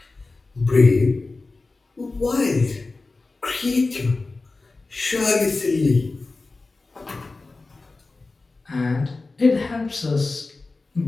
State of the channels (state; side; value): quieter; right; 3.5 dB